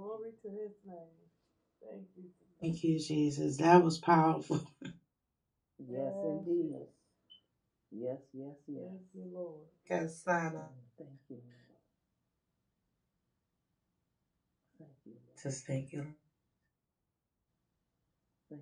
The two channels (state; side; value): identical; both; correlation 1.00